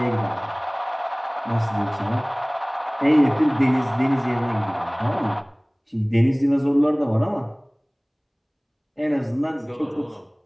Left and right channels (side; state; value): both; identical; correlation 1.00